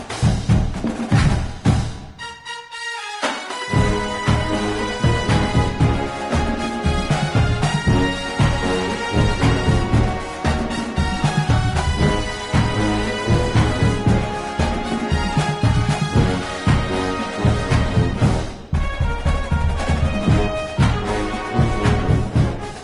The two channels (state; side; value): identical; both; correlation 1.00